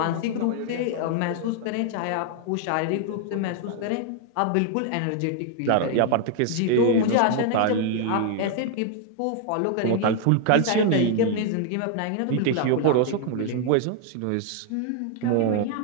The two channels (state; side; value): different; both; correlation 0.00